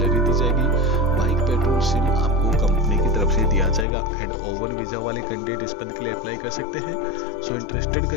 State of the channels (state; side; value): drops out; right; at 3.9 s